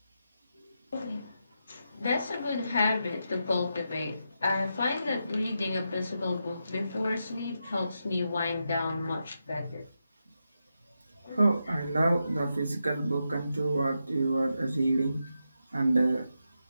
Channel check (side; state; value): both; inverted; correlation -0.86